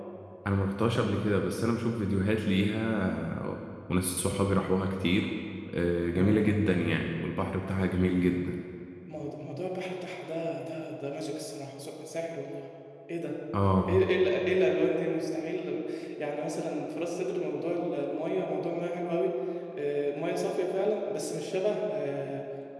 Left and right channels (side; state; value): both; identical; correlation 1.00